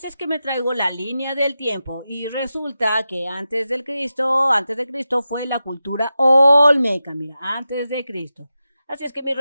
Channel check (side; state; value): both; inverted; correlation -0.91